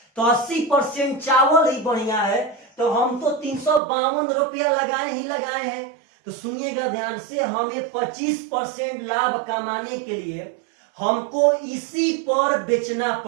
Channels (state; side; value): drops out; left; at 3.8 s